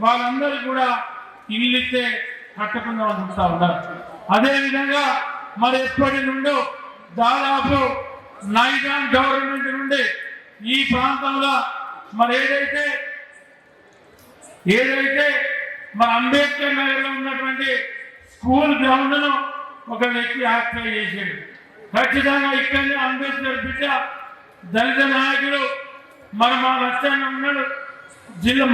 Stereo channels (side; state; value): both; identical; correlation 1.00